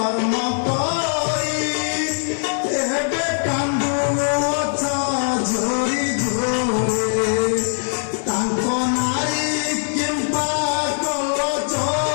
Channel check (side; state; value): right; silent; digital silence